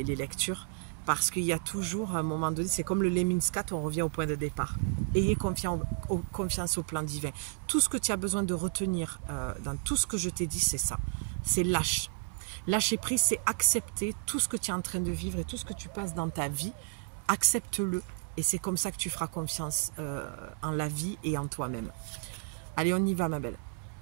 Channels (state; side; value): silent; left; 56 dB below the other